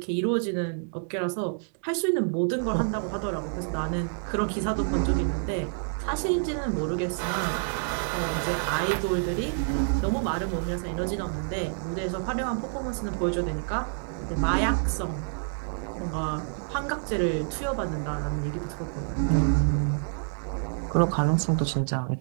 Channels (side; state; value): left; silent; digital silence